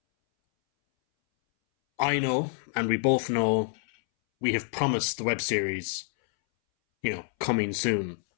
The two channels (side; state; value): right; silent; 60 dB below the other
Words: I know, and we both know, we have promised the web series, coming soon.